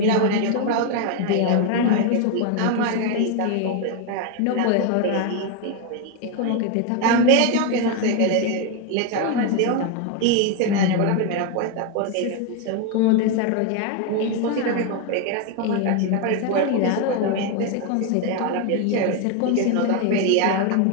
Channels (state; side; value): different; both; correlation 0.01